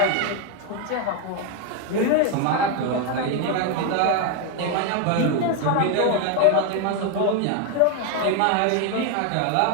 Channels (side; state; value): both; different; correlation 0.01